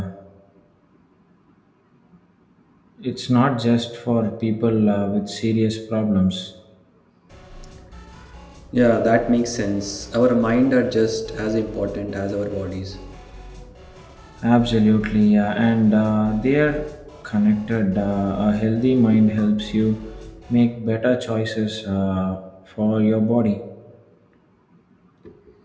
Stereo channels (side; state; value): both; identical; correlation 1.00